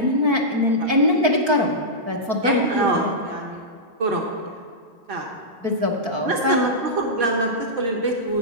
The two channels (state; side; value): late; left; 4.5 ms